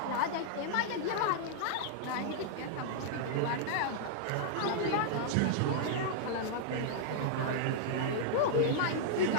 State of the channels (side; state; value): both; different; correlation -0.01